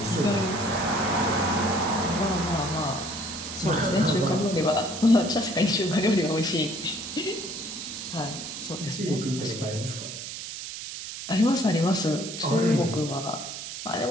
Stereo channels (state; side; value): noise; right; hiss, 9 dB below the sound